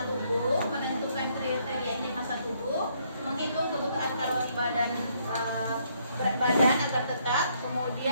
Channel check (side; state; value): both; inverted; correlation -0.70